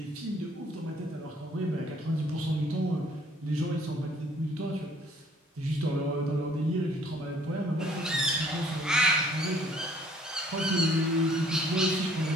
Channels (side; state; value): both; normal; correlation 0.58